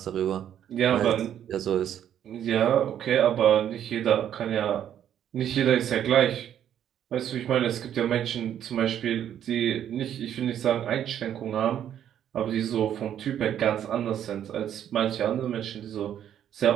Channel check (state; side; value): quieter; left; 10.1 dB